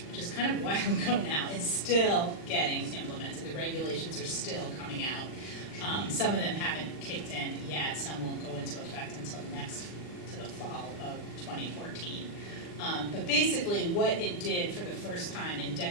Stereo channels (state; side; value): late; right; 40 ms